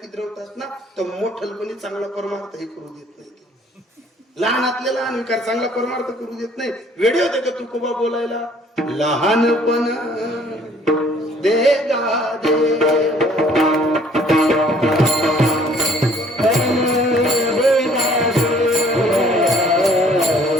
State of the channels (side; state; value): both; normal; correlation 0.58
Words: किद्रवतात ना तर मोठलपणी चांगला परमार्थही करू देत नाही. लहानातले लहान विकार चांगला परमार्थ करू देत नाही. वेळे होते का तुकोबा बोलायला लहानपण देगा देवा